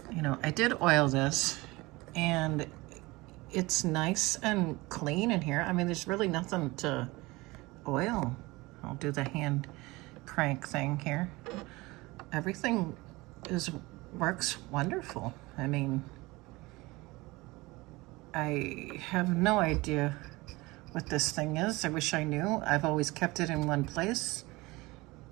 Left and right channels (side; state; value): left; quieter; 22.0 dB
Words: you know, I did oil this, and it's nice and clean in here. I mean, there's really nothing to oil. I'll do the hand crank thing here. Everything works wonderful. I mean, I have no idea what this thing is. I wish I knew. I've always kept it in one place,